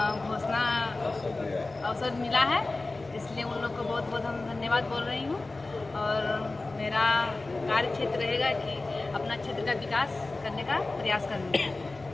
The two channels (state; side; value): quieter; right; 3.2 dB